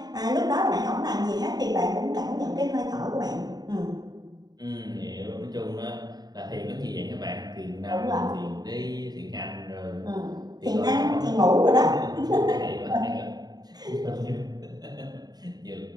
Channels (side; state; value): left; late; 0.19 ms